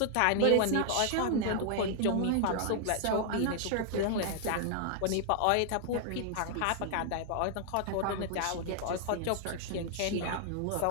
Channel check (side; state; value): both; different; correlation 0.00